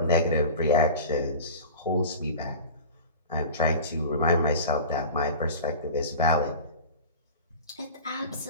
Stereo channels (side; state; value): both; inverted; correlation -0.34